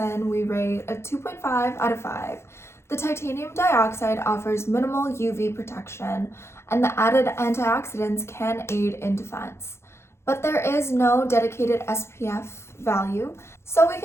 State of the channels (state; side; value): late; right; 0.13 ms